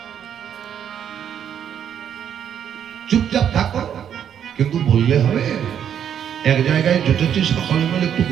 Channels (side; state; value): left; quieter; 9.0 dB